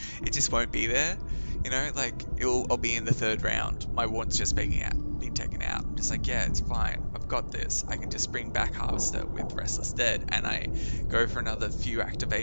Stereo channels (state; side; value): inverted; both; correlation -1.00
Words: be there, you know, like I'll be in the third round, my ward's just being taken out. I'm just like, yeah, it's fine, I've got this. I can just bring back Harvester with Restless Dead and I go for another few